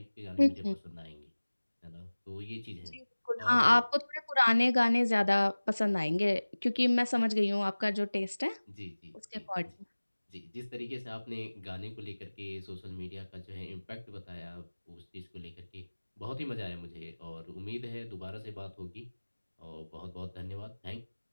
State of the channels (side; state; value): both; inverted; correlation -1.00